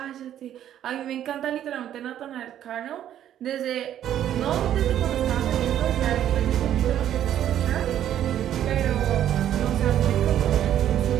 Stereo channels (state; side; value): quieter; left; 11.0 dB